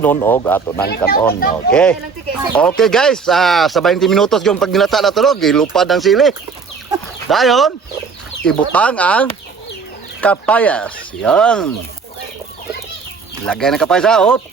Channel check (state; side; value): quieter; left; 5.3 dB